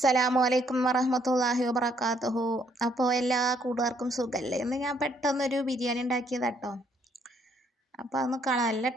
അലൈക്കും വറഹ്മത്തുള്ളാഹി വബറകാതുഹു. അപ്പോൾ എല്ലാ കൂട്ടുകാർക്കും സുഖമല്ലേ? ഇന്ന് ഞാൻ പെട്ടെന്നൊരു ബിരിയാണി ഉണ്ടാക്കിയതാട്ടോ. അപ്പോൾ അതൊന്ന് കാണാൻ നല്ല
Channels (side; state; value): both; normal; correlation 0.68